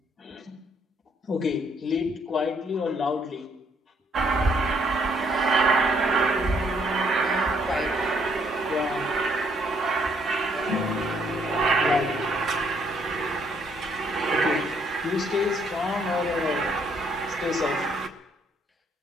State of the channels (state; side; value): normal; both; correlation 0.68